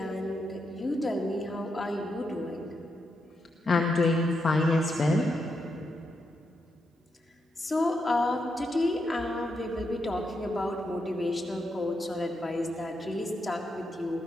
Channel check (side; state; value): both; normal; correlation 0.83